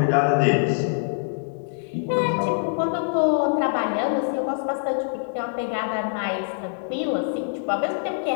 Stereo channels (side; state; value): right; silent; digital silence